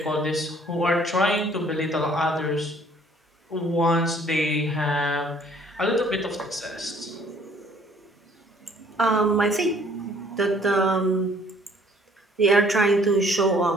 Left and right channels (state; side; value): normal; both; correlation 0.59